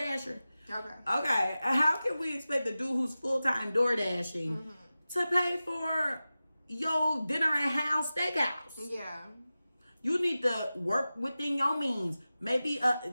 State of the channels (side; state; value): both; inverted; correlation -0.95